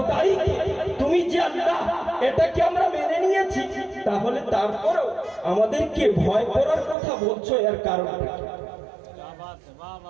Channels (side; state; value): left; drops out; at 7.0 s